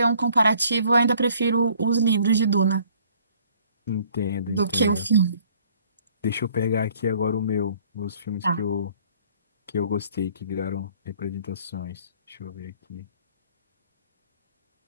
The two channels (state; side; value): inverted; both; correlation -0.59